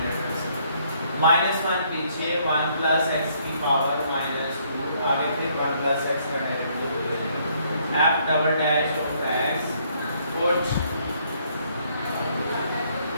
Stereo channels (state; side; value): inverted; both; correlation -0.68